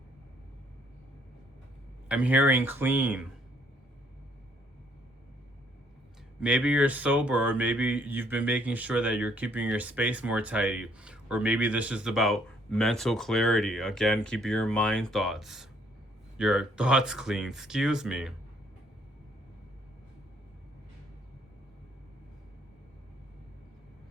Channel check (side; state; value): both; normal; correlation 0.66